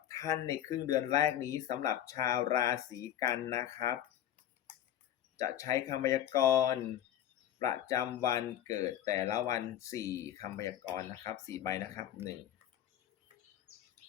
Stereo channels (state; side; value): quieter; right; 11.3 dB